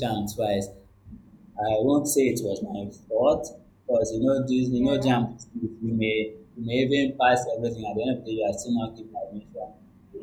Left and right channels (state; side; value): identical; both; correlation 1.00